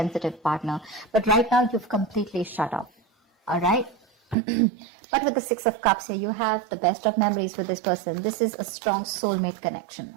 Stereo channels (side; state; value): left; drops out; at 4.4 s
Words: partner. But right now, you've completely shut up, all right? But with the Six of Cups here, you have the best of memories with this person. This is a strong soulmate connection,